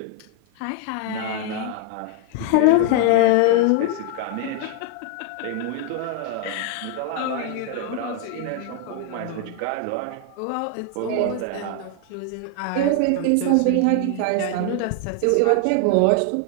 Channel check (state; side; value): different; both; correlation 0.00